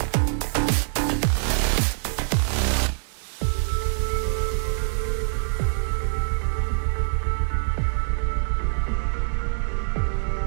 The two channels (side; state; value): left; silent; digital silence